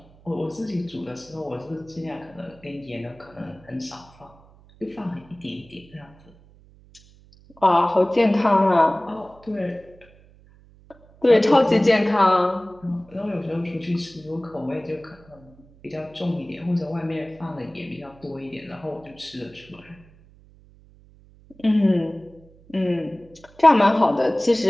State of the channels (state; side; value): noise; right; hum, 26 dB below the sound